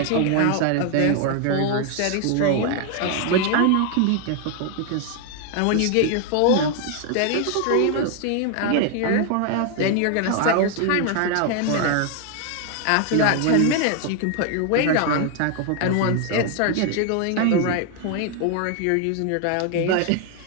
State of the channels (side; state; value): both; different; correlation 0.00